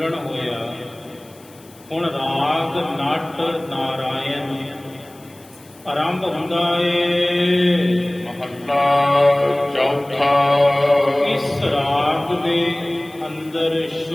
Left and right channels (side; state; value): left; noise; hiss, 26 dB below the sound